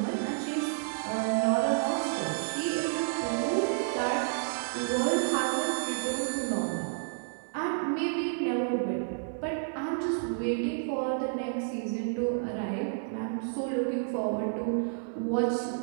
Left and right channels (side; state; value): left; silent; digital silence